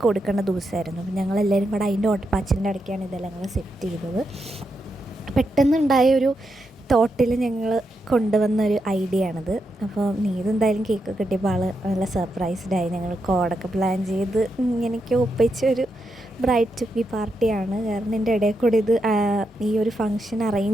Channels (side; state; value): both; normal; correlation 0.84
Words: കൊടുക്കേണ്ട ദിവസമായിരുന്നു. അപ്പോൾ ഞങ്ങളെല്ലാവരും കൂടെ അതിൻ്റെ ഓട്ടപ്പാച്ചിലിൻ്റെ ഇടയ്ക്കാണ് ഇതെല്ലാം കൂടെ സെറ്റ് ചെയ്തത്. പെട്ടെന്നുണ്ടായ ഒരു തോട്ടിൽ ഞങ്ങൾ കൊണ്ടുവന്നൊരു ഐഡിയ ആണിത്. അപ്പോൾ നീതെന്തായാലും കേക്ക് കിട്ടിയപ്പോൾ ആൾ നല്ല സർപ്രൈസ്ഡായി. ഞങ്ങൾ കോഡൊക്കെ പ്ലാൻ ചെയ്ത് ഇങ്ങനെയൊക്കെ ഒപ്പിച്ചൊരു ബ്രൈഡ് ടു ബി പാർട്ടിയാണ്. കാരണം എൻ്റെ ഇടയിൽ കൂടി ഈ ഒരു ഫങ്ഷൻ